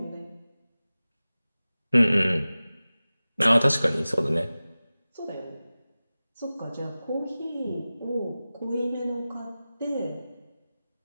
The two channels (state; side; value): inverted; both; correlation -0.97